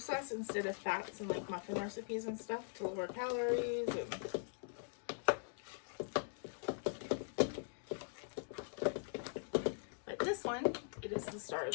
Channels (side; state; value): right; silent; digital silence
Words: instead of fats and like muffin recipes and stuff to lower calories. But this one, it is the star of